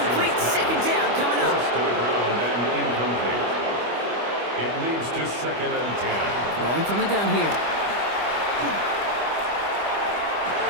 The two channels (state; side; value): late; left; 25 ms